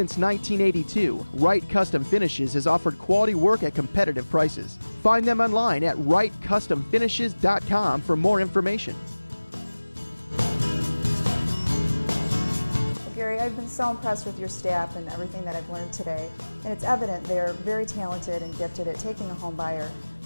1982, Wright Custom Finishes has offered quality work at competitive prices. Find them online at wrightcustomfinishes.com for more information. Gary, I've been so impressed with your staff and everything that I've learned today, and it's evident they're very talented and gifted at taking a home buyer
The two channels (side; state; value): both; inverted; correlation -1.00